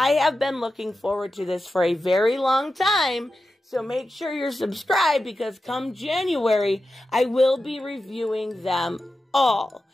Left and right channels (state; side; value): normal; both; correlation 0.91